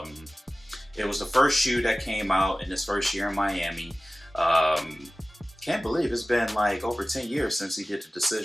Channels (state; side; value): normal; both; correlation 0.97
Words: It was the first shoe that came out in his first year in Miami. Can't believe it's been like over 10 years since he did the